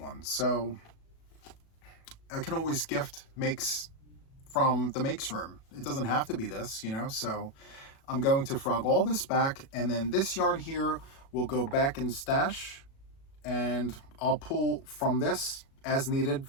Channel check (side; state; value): right; late; 36 ms